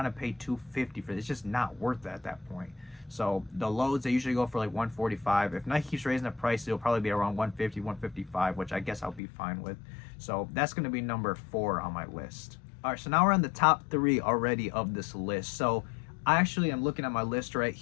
to pay $250 for this. It's just not worth it at that point. So the loads, they usually go for like $145. If Nike keeps raising the price, it'll probably be around $150, $155, which I guess I'll be fine with. So that's going to be number 4 on my list. All right, so now we're on the top 3 already of this list. So I actually am looking at my list right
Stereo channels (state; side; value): drops out; right; at 9.2 s